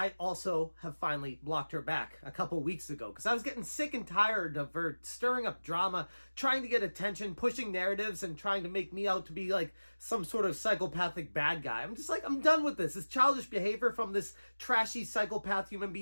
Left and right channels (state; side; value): inverted; both; correlation -1.00